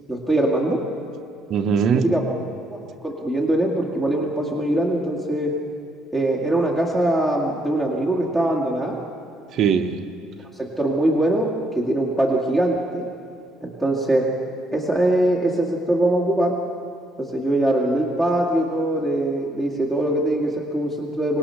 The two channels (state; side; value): normal; both; correlation 0.73